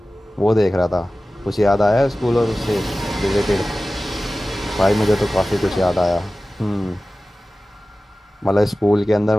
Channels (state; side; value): normal; both; correlation 0.96